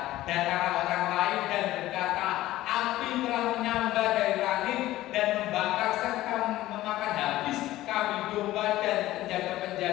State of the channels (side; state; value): right; quieter; 15.7 dB